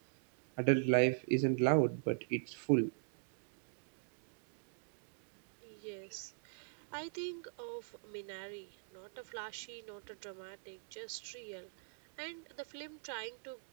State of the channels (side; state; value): left; silent; digital silence